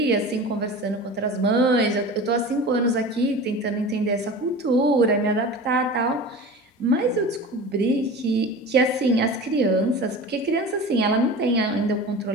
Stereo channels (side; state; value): both; normal; correlation 0.34